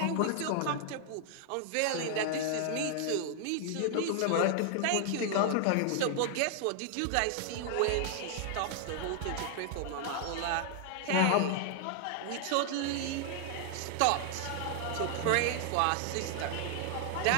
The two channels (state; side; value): different; both; correlation 0.00